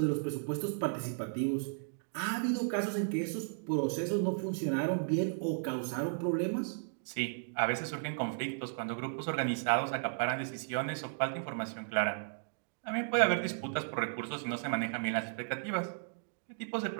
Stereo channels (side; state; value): left; silent; digital silence